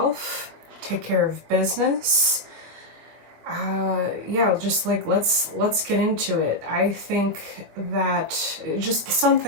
take care of business. Yeah, just like let's get into it. I think that just some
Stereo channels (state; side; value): late; left; 24 ms